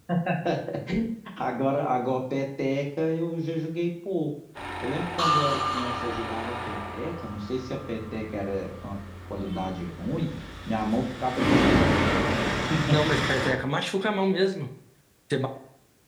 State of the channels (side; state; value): both; identical; correlation 1.00